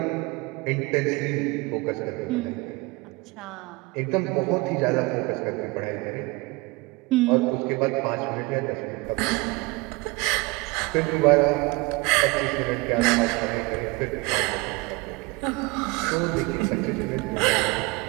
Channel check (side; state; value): left; quieter; 25.1 dB